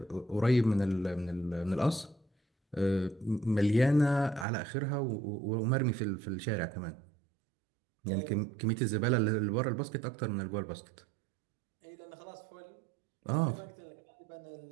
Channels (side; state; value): left; drops out; at 4.5 s